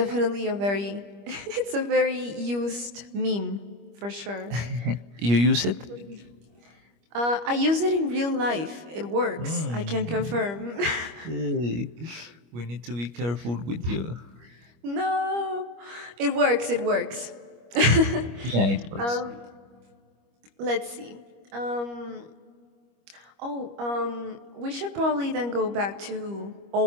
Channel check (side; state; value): left; late; 25 ms